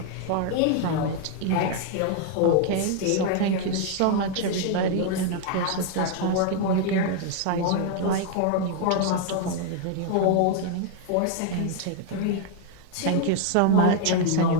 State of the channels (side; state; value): both; different; correlation 0.00